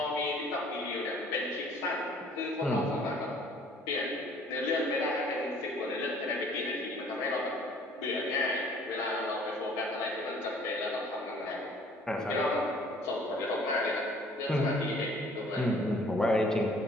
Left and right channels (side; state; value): both; normal; correlation 0.55